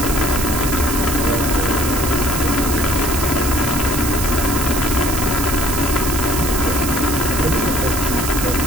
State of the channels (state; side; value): noise; right; hiss, 4 dB below the sound